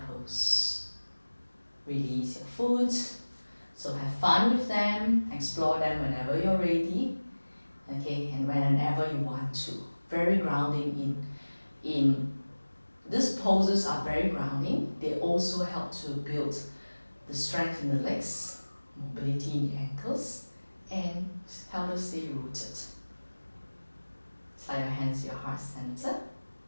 Release your foot. So have fun with them, explore them whenever you're ready. Okay, and whenever you want to. Very grounding in these poses are very grounding. They also help to build the strength in the legs, mobility in the ankles, and help us stay rooted. Slide your hands to your heart center.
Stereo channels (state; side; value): inverted; both; correlation -1.00